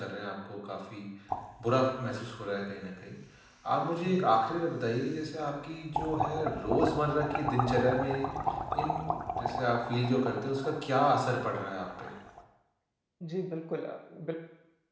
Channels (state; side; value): identical; both; correlation 1.00